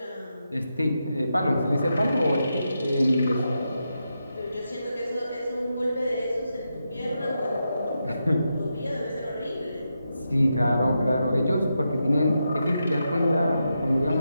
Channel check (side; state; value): both; inverted; correlation -0.86